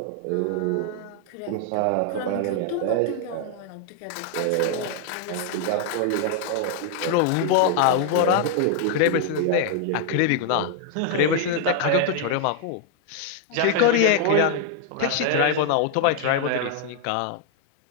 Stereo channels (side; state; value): both; different; correlation 0.00